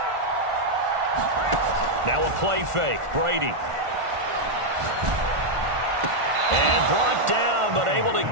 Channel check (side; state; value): left; late; 1.4 ms